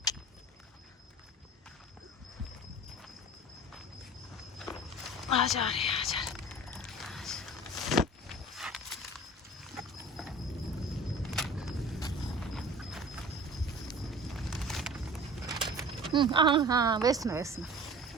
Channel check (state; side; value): normal; both; correlation 0.41